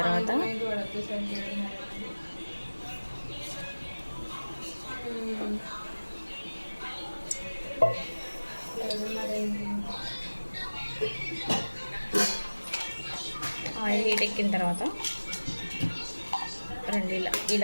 తర్వాత ఆయిల్ హీట్ ఎక్కిన తర్వాత రెండు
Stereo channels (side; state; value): both; inverted; correlation -1.00